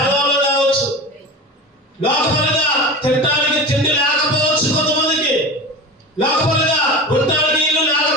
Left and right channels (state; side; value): normal; both; correlation 0.29